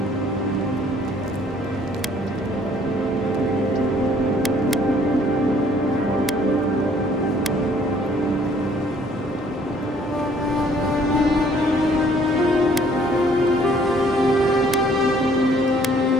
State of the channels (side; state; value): both; normal; correlation 0.60